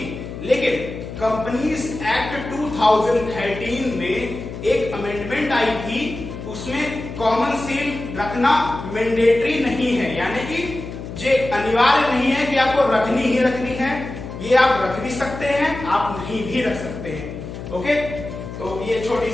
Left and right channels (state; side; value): noise; left; hum, 10 dB below the sound